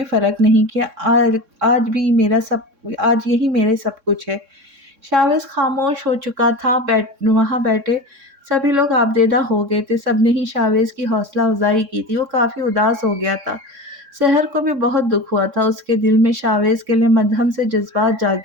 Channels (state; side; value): late; left; 3.6 ms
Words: फ़र्क नहीं किया। आज यही मेरे सब कुछ है। शाहवेज़ खामोश हो चुका था। वहाँ बैठे सभी लोग आबदेदा हो गए थे। सबने ही शाहवेज़ की हौसला अफ़ज़ाई की थी। वो काफ़ी उदास हो गया था। सहर को भी बहुत दुःख हुआ था। उसके दिल में शाहवेज़ के लिए मद्धम से जज़्बात